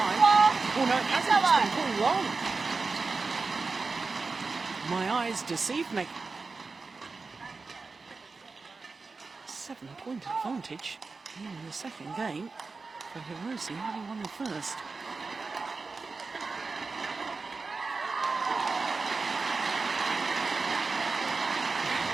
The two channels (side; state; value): left; quieter; 4.2 dB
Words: Oh no, it hasn't, it's been pulled long. My eyes deceived me. 7-point advantage in the second game for Hirose, having won the first.